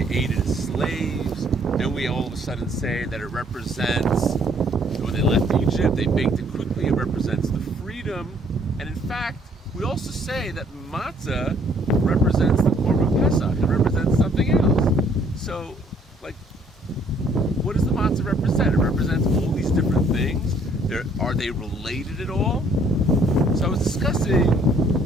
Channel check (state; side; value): normal; both; correlation 0.62